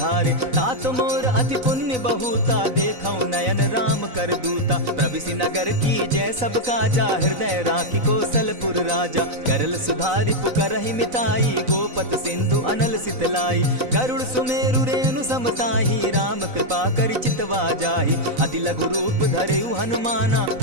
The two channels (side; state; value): left; late; 4.0 ms